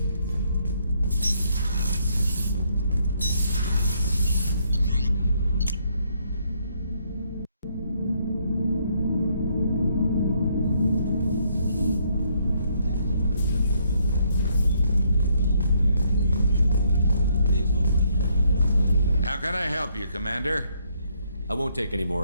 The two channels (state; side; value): inverted; both; correlation -0.71